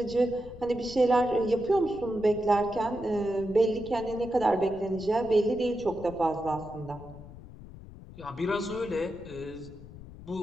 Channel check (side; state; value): left; noise; rumble, 16 dB below the sound